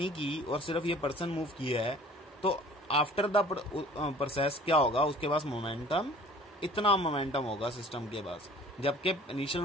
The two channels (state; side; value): normal; both; correlation 0.49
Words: की और सिर्फ ये पर्सन मूव किया है, तो आफ्टर द प्रोसेस क्या होगा? उसके पास मोमेंटम, इतना मोमेंटम होगा सिस्टम के पास, जबकि इनिशियल